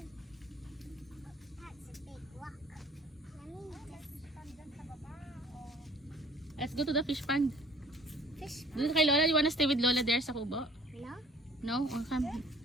that's a big rock. Let me Let's go to the fish pond. fish. Doon kay Lola. You wanna stay with Lola there sa kubo? No? No? Oh, come.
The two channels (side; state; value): both; normal; correlation 0.53